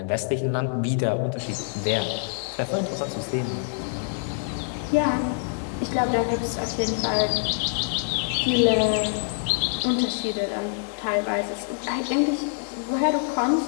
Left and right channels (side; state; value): right; silent; 57 dB below the other